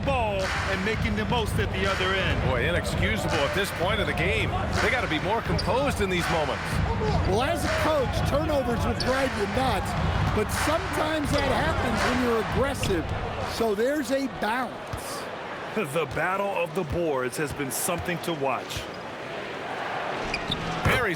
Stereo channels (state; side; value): identical; both; correlation 1.00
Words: and making the most at the other end. Boy, inexcusable at this point of the game. They got to be more composed in these moments. Well, as a coach, turnovers will drive you nuts, but sometimes that happens when you're aggressive. So there's a balance. The battle of the boards has been something to watch.